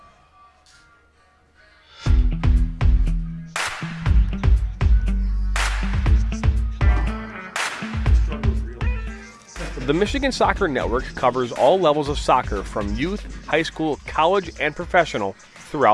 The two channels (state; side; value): identical; both; correlation 1.00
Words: The Michigan Soccer Network covers all levels of soccer from youth, high school, college, and professional